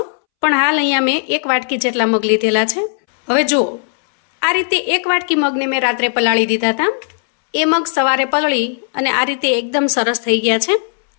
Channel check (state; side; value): silent; right; 67 dB below the other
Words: પણ હાલ અહીંયા મેં 1 વાટકી જેટલા મગ લીધેલા છે. હવે જુઓ, આ રીતે 1 વાટકી મગને મેં રાત્રે પલાળી દીધા હતા. એ મગ સવારે પલળી અને આ રીતે એકદમ સરસ થઈ ગયા છે.